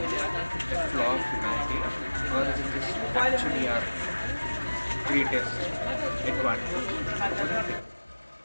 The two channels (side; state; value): both; inverted; correlation -1.00